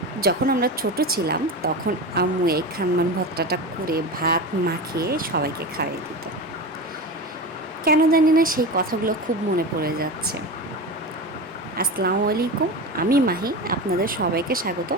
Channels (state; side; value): normal; both; correlation 0.25